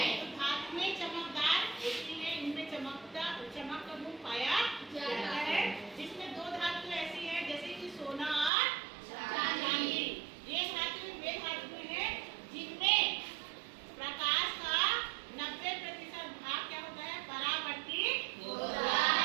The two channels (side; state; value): left; drops out; at 8.5 s